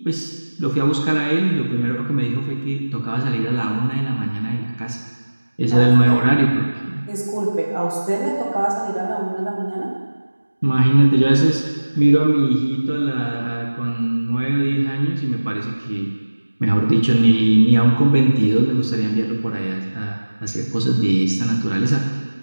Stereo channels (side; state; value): both; inverted; correlation -1.00